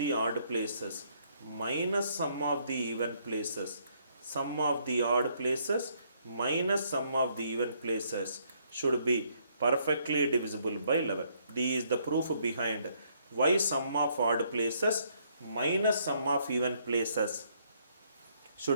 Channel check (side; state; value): both; inverted; correlation -0.69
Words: odd places minus sum of the even places. Sum of the odd places minus sum of the even places should be perfectly divisible by 11. This is the proof behind why sum of odd places minus sum of even places